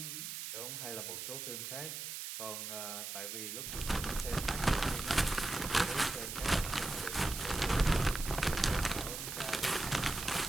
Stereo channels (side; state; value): right; noise; hiss, 6 dB below the sound